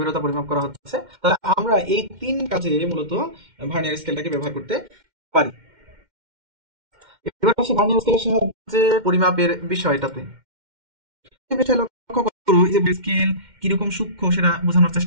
পরিমাপ করা হচ্ছে। তাহলে আমরা এই তিন কাজে মূলত ভার্নিয়ার স্কেলটাকে ব্যবহার করতে পারি। এবার আসি ভার্নিয়ার স্কেলের সাহায্যে পরিমাপের বিষয়টাতে। এই বিষয়ে লক্ষ্য করো যে স্কেল কিরকম সূক্ষ্ম সেটা বোঝানোর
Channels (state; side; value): late; left; 2.1 ms